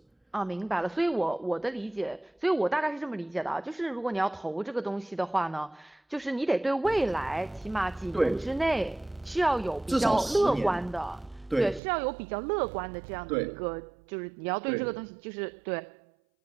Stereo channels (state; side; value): drops out; left; at 11.8 s